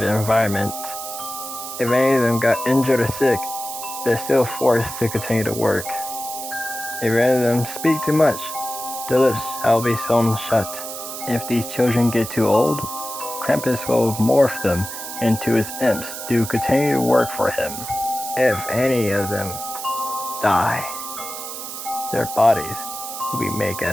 environment. If any of them got injured or sick, they're still forced to continue to work. If any of them speak too much, their lips shall be sewn shut. If these children get too old, Krampus will morph them into his imps to continue to work for him. If any of them die, their bodies will be made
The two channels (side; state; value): right; noise; hiss, 8 dB below the sound